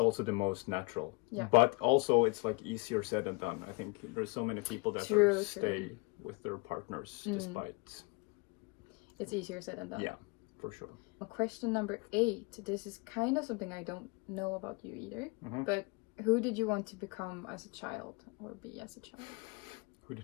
the most natural. Yeah. But also it's like easier said than done. I think there's so many people that stay with their partners despite. It's easier said than done. Yeah, for sure. Question number 8. This is kind of something I don't know about you either. But who did you want to become as a child or be as a child? Who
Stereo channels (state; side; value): quieter; right; 28.3 dB